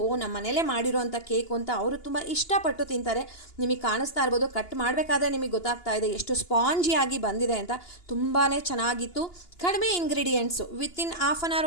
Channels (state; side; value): late; right; 2.9 ms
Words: ಮನೆಯಲ್ಲೇ ಮಾಡಿರೋಂಥ ಕೇಕು ಅಂತ ಅವರು ತುಂಬ ಇಷ್ಟಪಟ್ಟು ತಿಂತಾರೆ. ನಿಮಗೆ ಕಾಣಿಸ್ತಾ ಇರ್ಬೋದು, ಕಟ್ ಮಾಡಬೇಕಾದ್ರೆ ನಿಮಗೆ ಗೊತ್ತಾಗ್ತಾ ಇದೆ ಎಷ್ಟು ಸ್ಪಾಂಜಿಯಾಗಿ ಬಂದಿದೆ ಅಂತ. ತುಂಬಾ ಚೆನ್ನಾಗಿತ್ತು. ಕಡಿಮೆ ಇಂಗ್ರೀಡಿಯೆಂಟ್ಸು, ವಿತಿನ್ ½ ಆನ್ ಅವರ್